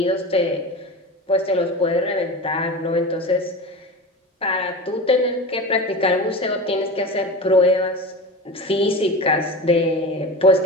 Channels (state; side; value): normal; both; correlation 0.29